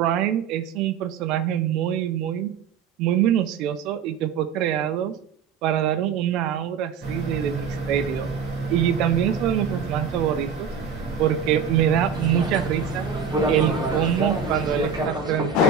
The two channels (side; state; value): left; quieter; 6.5 dB